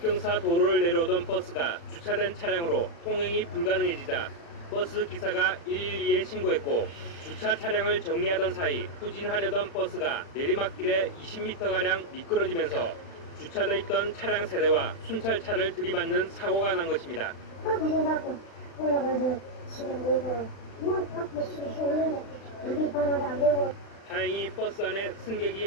도로를 내려오던 버스가 주차된 차량으로 통행이 불가능해지자 버스 기사가 112에 신고했고 주차 차량을 정리하던 사이 후진하려던 버스가 내리막길에 20m가량 미끄러지면서 주차돼 있던 차량 세대와 순찰차를 들이받는 사고가 난 것입니다. 배정받고 올라가서 지금 뭐 앞에 수 있는데 우리 방어도 안 되고. 다행히 버스 안에 승객이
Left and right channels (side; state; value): right; late; 36 ms